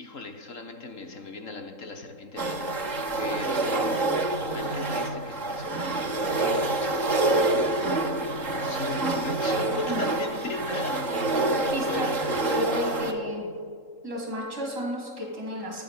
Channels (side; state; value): right; late; 3.8 ms